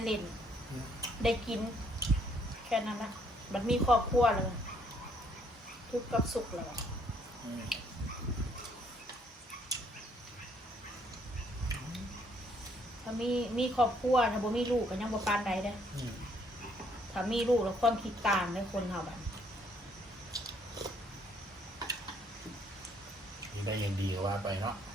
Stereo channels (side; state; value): both; normal; correlation 0.67